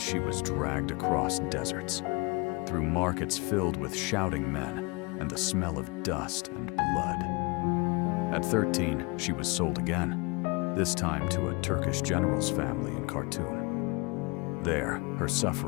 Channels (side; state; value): right; quieter; 27.8 dB